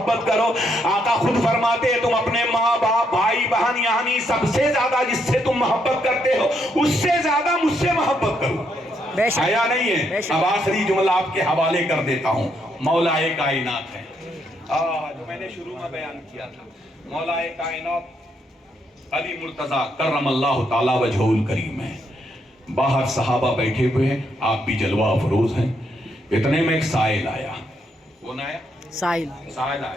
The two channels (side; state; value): both; normal; correlation 0.76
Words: کرو۔ آقا خود فرماتے ہیں تم اپنے ماں باپ بھائی بہن یعنی سب سے زیادہ جس سے تم محبت کرتے ہو اس سے زیادہ مجھ سے محبت کرو۔ آیا نہیں ہے؟ اب آخری جملہ آپ کے حوالے کر دیتا ہوں، مولا کائنات ہے جو میں نے شروع میں بیان کیا تھا۔ مولا کائنات علی مرتضیٰ کرم اللہ تعالی وجہہ الکریم ہے، باہر صحابہ بیٹھے ہوئے ہیں، آپ بھی جلوہ افروز ہیں۔ اتنے میں ایک سائل آیا۔ کون آیا؟ سائل آیا۔